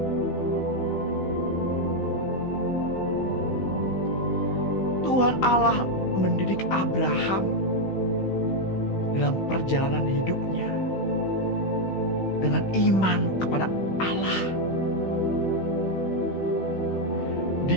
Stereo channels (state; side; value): late; right; 16 ms